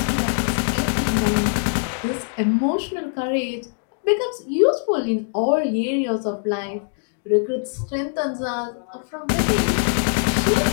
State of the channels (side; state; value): right; silent; digital silence